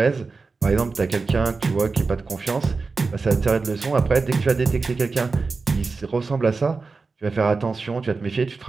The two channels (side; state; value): left; quieter; 4.2 dB